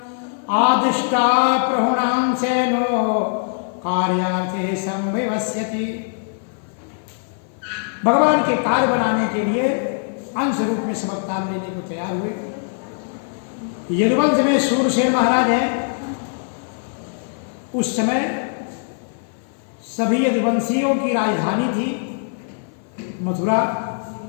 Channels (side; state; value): right; silent; 56 dB below the other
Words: आदिष्टा प्रहुणां सेनो कार्यार्थे संविवस्यति। भगवान के कार्य बनाने के लिए अंश रूप में सब अवतार लेने को तैयार हुए। यदुवंश में सूरसेन महाराज हैं। उस समय सभी यदुवंशियों की राजधानी थी मथुरा।